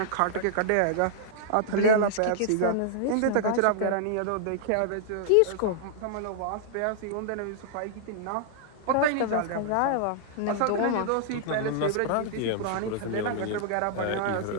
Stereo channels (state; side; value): different; both; correlation -0.01